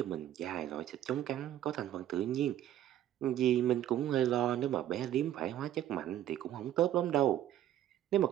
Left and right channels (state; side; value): quieter; left; 12.0 dB